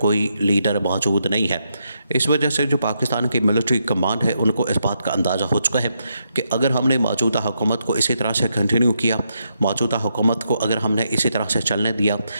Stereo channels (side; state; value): both; inverted; correlation -0.80